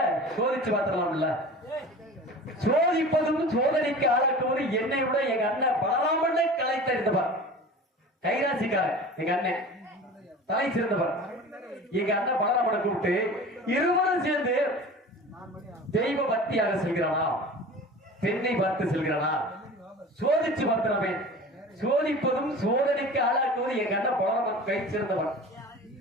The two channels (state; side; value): normal; both; correlation 0.38